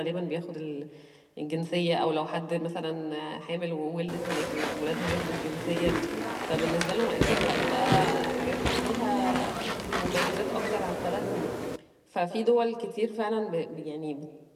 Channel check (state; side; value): identical; both; correlation 1.00